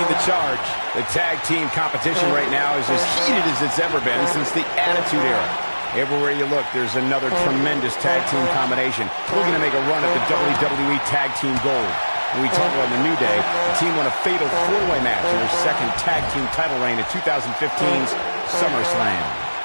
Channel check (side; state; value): both; inverted; correlation -1.00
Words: the charge. The tag team competition right now is as heated as it's ever been since the Attitude Era. Everywhere you look, there's another tremendous tag team combination looking to make a run at the WWE Tag Team Gold. When we talk about the New Day, the team won a fatal four-way match in their second tag team title reign at 2015's SummerSlam.